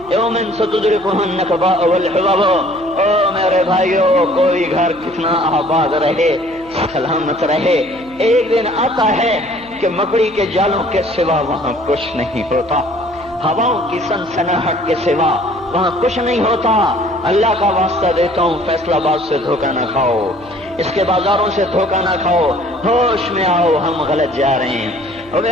یوم ستدرکها النکباء والحباب. او میرے بھائیو، کوئی گھر کتنا آباد رہے، سلامت رہے، ایک دن آتا ہے کہ مکڑی کے جالوں کے سوا وہاں کچھ نہیں ہوتا، ہواؤں کی سنسناہٹ کے سوا وہاں کچھ نہیں ہوتا. اللہ کا واسطہ دیتا ہوں فیصلہ آباد سے دھوکہ نہ کھاؤ، اس کے بازاروں سے دھوکہ نہ کھاؤ، ہوش میں آؤ، ہم غلط جا رہے ہیں. اور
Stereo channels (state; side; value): noise; left; hum, 24 dB below the sound